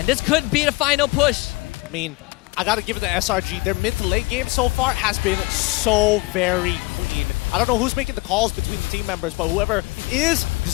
this could be the final push. I mean, I gotta give it to SRG. Their mid to late game so far has been so very clean. I don't know who's making the calls between the team members, but whoever is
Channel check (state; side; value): quieter; right; 23.7 dB